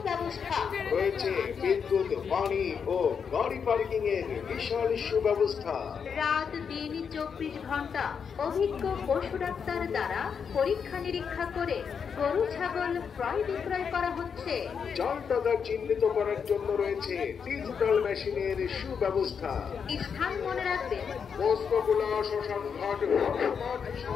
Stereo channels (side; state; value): right; quieter; 6.6 dB